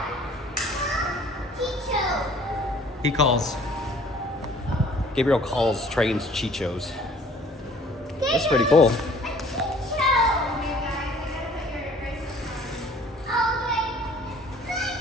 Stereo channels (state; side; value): normal; both; correlation 0.54